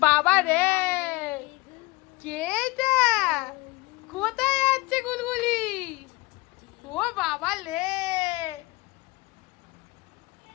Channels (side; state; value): right; quieter; 22.2 dB